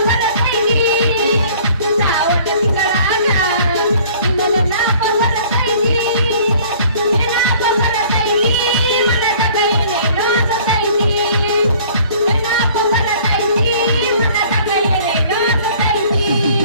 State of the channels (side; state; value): both; inverted; correlation -0.52